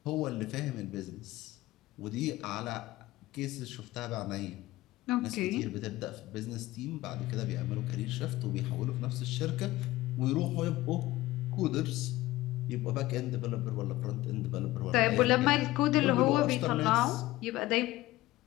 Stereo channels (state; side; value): quieter; right; 17.5 dB